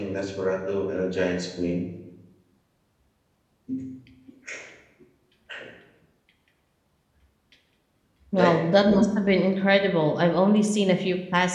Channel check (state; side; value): identical; both; correlation 1.00